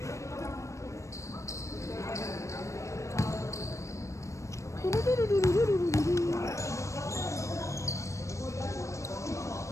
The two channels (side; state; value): right; late; 0.15 ms